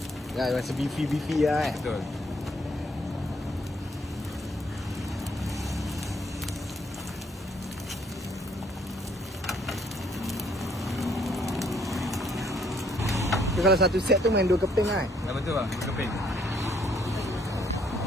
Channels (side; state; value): both; normal; correlation 0.67